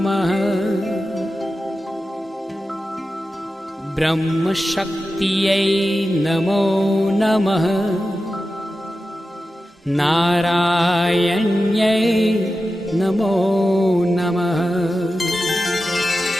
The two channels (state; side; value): normal; both; correlation 0.93